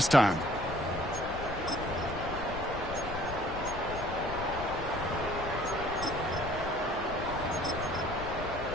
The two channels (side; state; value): left; noise; rumble, 9 dB below the sound